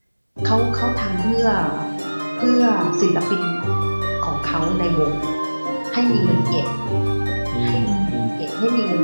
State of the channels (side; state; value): both; inverted; correlation -1.00